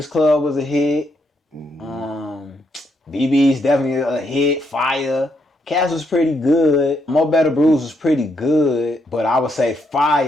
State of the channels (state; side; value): normal; both; correlation 0.77